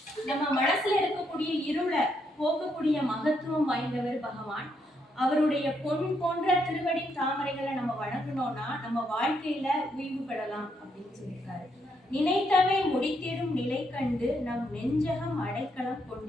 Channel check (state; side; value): normal; both; correlation 0.76